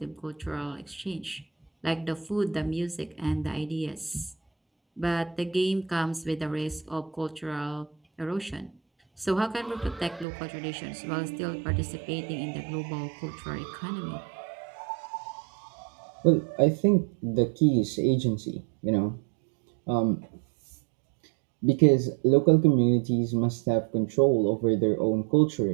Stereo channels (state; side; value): drops out; left; at 10.2 s